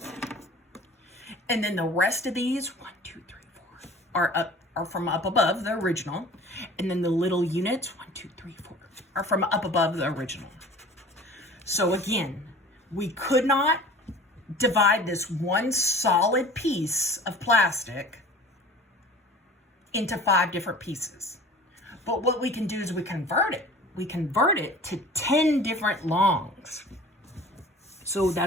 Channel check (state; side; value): normal; both; correlation 0.44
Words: And then the rest of these, 1, 2, 3, 4, are from up above the original. And then the little units, 1, 2, 3, 4, are from up above the original. So again, we could not divide this one solid piece of plastic into 5 different pieces. But what we can do is we convert it. We convert it to 10 different longs. So